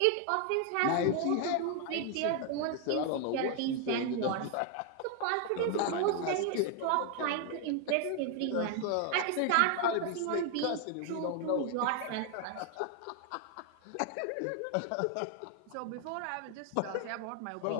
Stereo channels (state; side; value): different; both; correlation 0.01